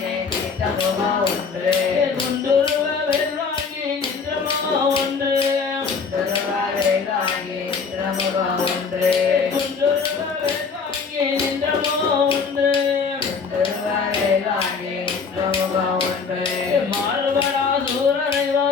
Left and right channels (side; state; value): right; quieter; 5.3 dB